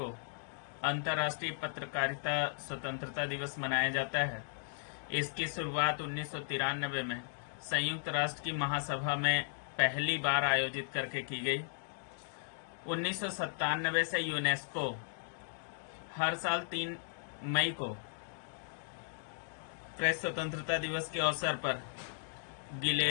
अंतर्राष्ट्रीय पत्रकारिता स्वतंत्रता दिवस मनाया जाता है। इसकी शुरुआत 1993 में संयुक्त राष्ट्र की महासभा में पहली बार आयोजित करके की गई। 1997 से यूनेस्को हर साल 3 मई को प्रेस स्वतंत्रता दिवस के अवसर पर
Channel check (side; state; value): right; silent; digital silence